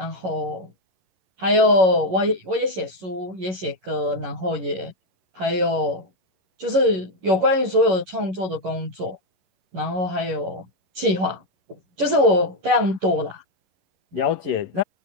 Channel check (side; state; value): left; late; 11 ms